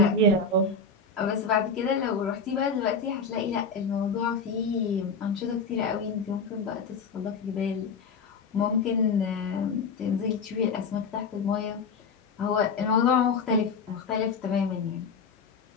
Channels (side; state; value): right; quieter; 4.5 dB